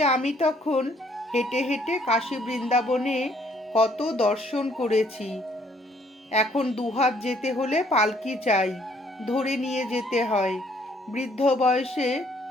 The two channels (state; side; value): normal; both; correlation 0.64